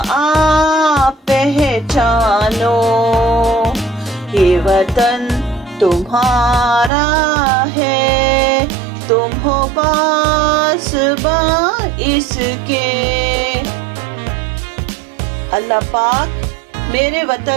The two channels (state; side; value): drops out; left; at 6.9 s